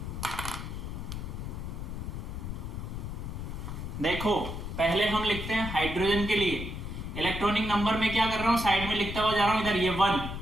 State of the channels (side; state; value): left; noise; rumble, 6 dB below the sound